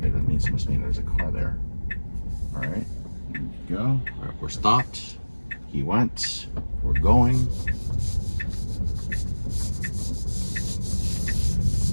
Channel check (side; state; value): both; inverted; correlation -1.00